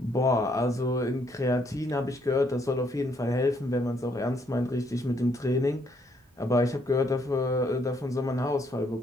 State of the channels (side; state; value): both; normal; correlation 0.71